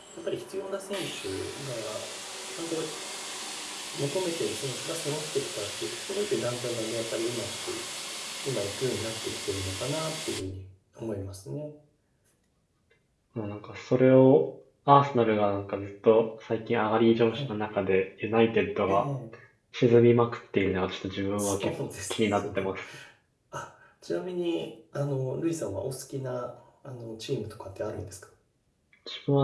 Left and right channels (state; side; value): identical; both; correlation 1.00